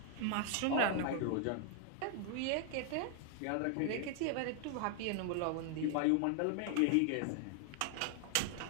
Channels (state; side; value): different; both; correlation 0.00